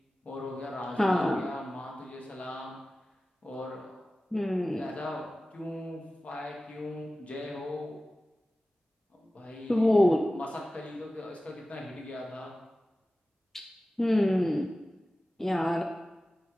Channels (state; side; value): normal; both; correlation 0.96